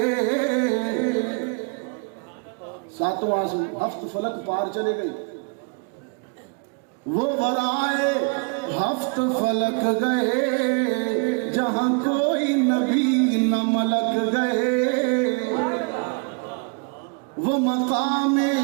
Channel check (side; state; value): left; quieter; 35.6 dB